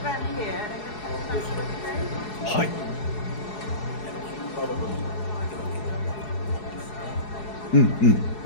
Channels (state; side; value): late; right; 4.7 ms